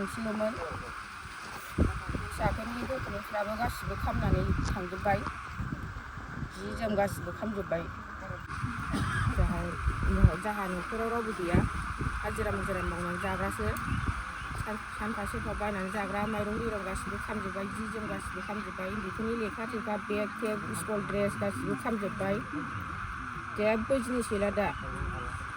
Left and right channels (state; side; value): identical; both; correlation 1.00